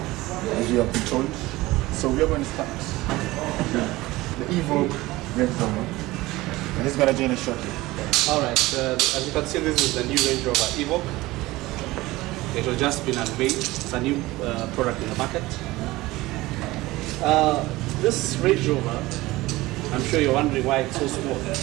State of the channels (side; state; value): left; quieter; 19.2 dB